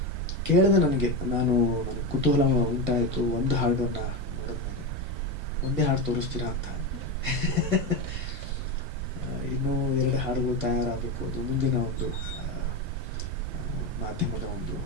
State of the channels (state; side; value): normal; both; correlation 0.16